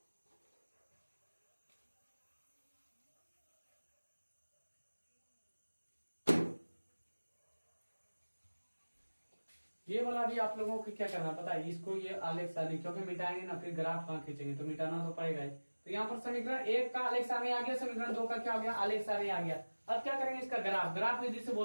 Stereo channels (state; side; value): inverted; both; correlation -1.00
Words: ये वाला भी आप लोगों को क्या करना पता है, इसको ये आलेख सारणी क्योंकि मिटाएंगे ना फिर ग्राफ कहाँ खींचेंगे, तो मिटाना तो पड़ेगा ही। तो यहाँ पर समीकरण 1 का आलेख सारणी आ गया, समीकरण 2 का क्या हो गया आलेख सारणी आ गया। अब क्या करेंगे इसका ग्राफ विधि से